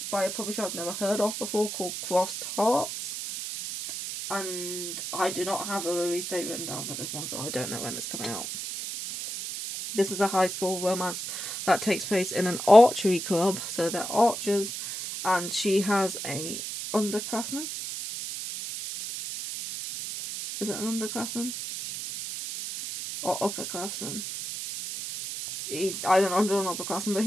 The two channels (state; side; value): noise; right; hiss, 6 dB below the sound